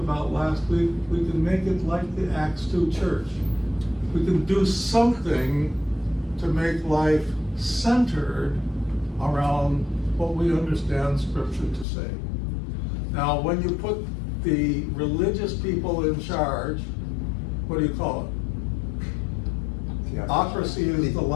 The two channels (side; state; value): right; drops out; at 11.9 s